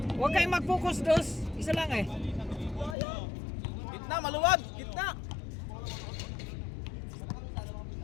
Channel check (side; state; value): right; drops out; at 3.0 s